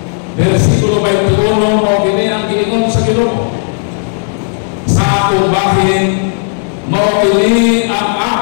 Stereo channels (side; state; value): right; silent; digital silence